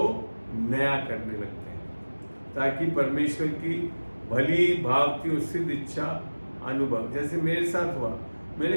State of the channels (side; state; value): both; inverted; correlation -1.00